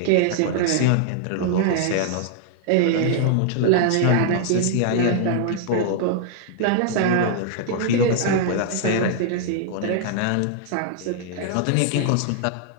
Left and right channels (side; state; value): both; different; correlation 0.00